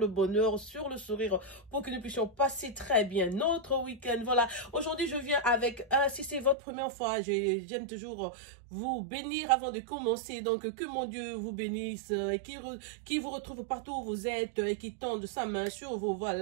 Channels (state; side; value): drops out; left; at 6.6 s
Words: bonheur, sur le sourire pour que nous puissions passer très bien notre week-end. Voilà, aujourd'hui je viens avec, si c'est votre première fois, j'aime toujours vous bénir avant de commencer. Donc que mon Dieu vous bénisse, qui vous retrouve partout où vous êtes et qui tende sa main sur vous.